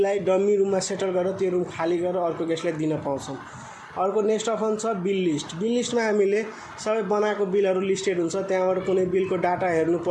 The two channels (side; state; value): both; identical; correlation 1.00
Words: डमी रुममा सेटल गरेर त्यो रुम खाली गरेर अर्को गेस्टलाई दिन पाउँछौँ। अर्को नेक्स्ट अप्सन छ बिल लिस्ट। बिल लिस्टमा हामीले सबै बनाएको बिलहरू लिस्टेड हुन्छ, त्यहाँबाट कुनै बिलको डाटा हेर्नु